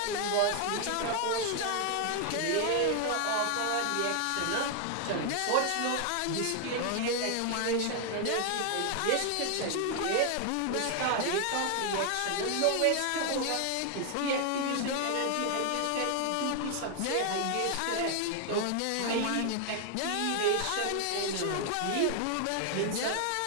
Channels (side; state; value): both; different; correlation 0.00